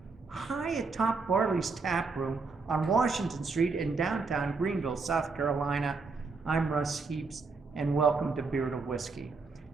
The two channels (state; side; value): quieter; left; 4.3 dB